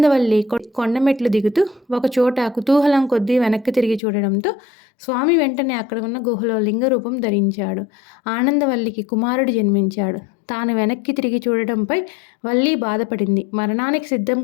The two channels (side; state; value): right; drops out; at 4.0 s